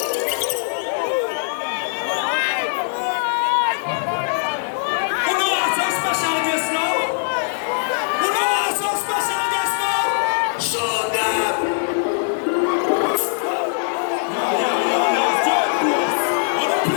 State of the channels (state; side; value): silent; right; digital silence